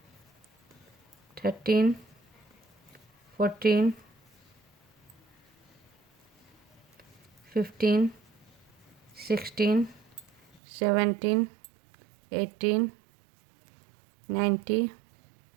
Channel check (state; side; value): drops out; left; at 10.6 s